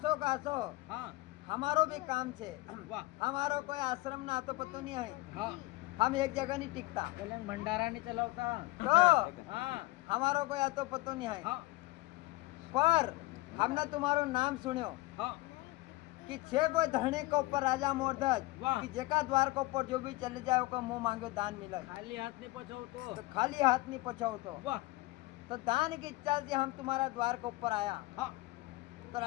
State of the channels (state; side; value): quieter; right; 20.5 dB